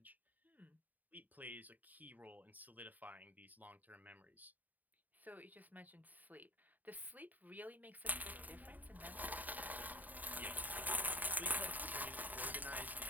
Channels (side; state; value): left; late; 0.083 ms